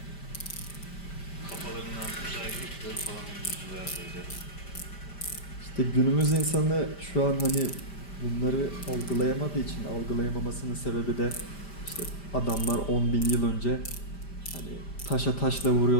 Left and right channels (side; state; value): right; late; 5.0 ms